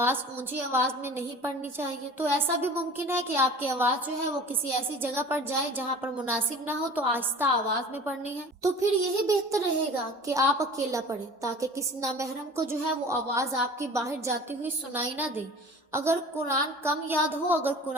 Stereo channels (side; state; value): both; normal; correlation 0.42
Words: اونچی آواز میں نہیں پڑھنی چاہیے، تو ایسا بھی ممکن ہے کہ آپ کی آواز جو ہے وہ کسی ایسی جگہ پر جائے جہاں پر مناسب نہ ہو، تو آہستہ آواز میں پڑھنی ہے، تو پھر یہی بہتر رہے گا کہ آپ اکیلا پڑھیں تاکہ کسی نامحرم کو جو ہے وہ آواز آپ کی باہر جاتی ہوئی سنائی نہ دے۔ اگر قرآن کم یاد ہو، اگر